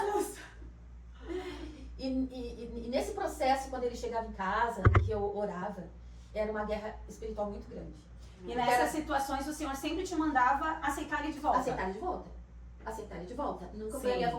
E nesse processo, quando ele chegava em casa, que eu orava, era uma guerra espiritual muito grande. E nessas situações o Senhor sempre te mandava aceitar ele de volta. Aceitar ele de volta. Aceitar ele de volta. Nunca Sim. foi a minha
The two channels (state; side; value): identical; both; correlation 1.00